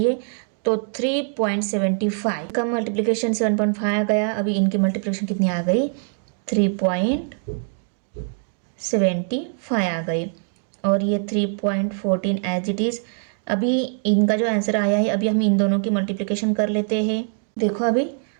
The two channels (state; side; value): silent; left; 64 dB below the other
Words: तो 3.75 का मल्टीप्लिकेशन 7.5 आ गया। अभी इनकी मल्टीप्लिकेशन कितनी आ गई, 3.75 आ गई, और ये 3.14 एज इट इज़। अभी इनका जो आंसर आया है, अभी हम इन दोनों की मल्टीप्लिकेशन कर लेते हैं। देखो अभी